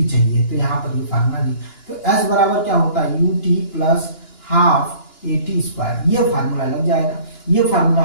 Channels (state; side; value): late; right; 2.9 ms